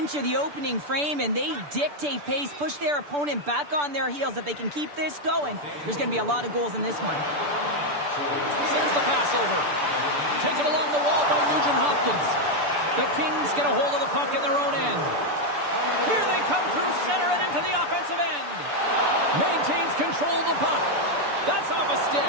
the opening frame, and they dictate pace, push their opponent back on their heels. If they can keep this going, there's going to be a lot of goals in this one. Sends the pass over. Taken along the wall by Nugent-Hopkins. The Kings get a hold of the puck in their own end. Here they come through center and into the offensive end. Maintains control of the puck. That's off a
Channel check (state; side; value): late; left; 6.9 ms